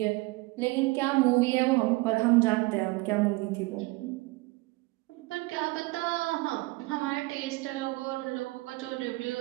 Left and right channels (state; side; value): quieter; left; 22.6 dB